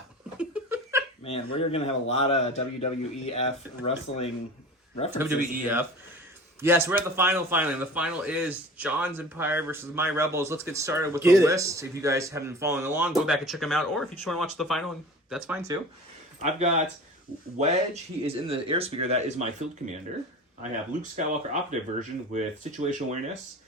Man, we're going to have a lot of WWEF wrestling references. WWEF. Yes, we're at the final finally. The final is John's Empire versus My Rebels. Let's get started with the list. If you guys haven't been following along, go back and check them out. Or if you just want to watch the final, that's fine too. I've got Wedge. He is in the airspeeder. That is my field commander. I have Luke Skywalker operative version with situational awareness,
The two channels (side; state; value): both; normal; correlation 0.38